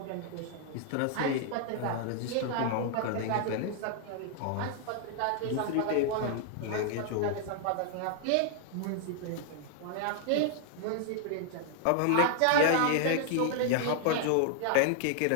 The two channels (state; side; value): different; both; correlation 0.00